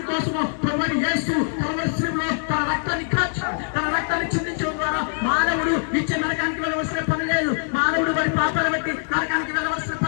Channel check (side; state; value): right; silent; digital silence